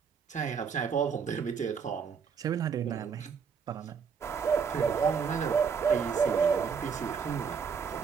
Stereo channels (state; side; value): quieter; left; 6.4 dB